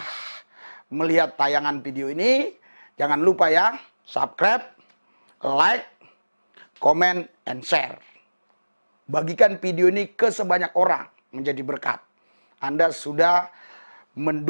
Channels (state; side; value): inverted; both; correlation -1.00